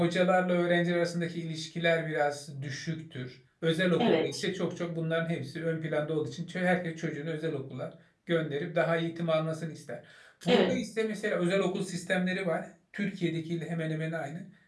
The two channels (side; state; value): both; identical; correlation 1.00